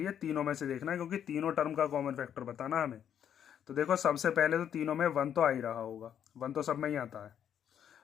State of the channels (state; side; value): quieter; right; 9.2 dB